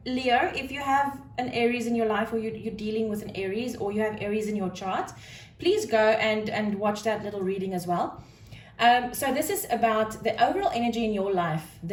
Leo, if you have an Aries in your life, or you're dealing with an Aries, or you have Aries in your chart, please go and watch that little reading as well. So this is about the overall energy in your life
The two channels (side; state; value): both; identical; correlation 1.00